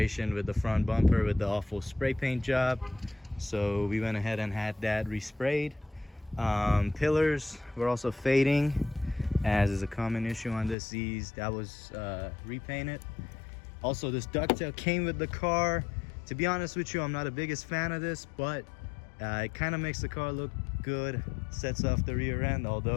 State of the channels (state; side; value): drops out; right; at 10.8 s